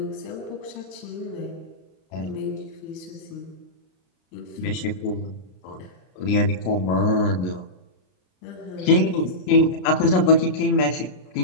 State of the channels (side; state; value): right; late; 33 ms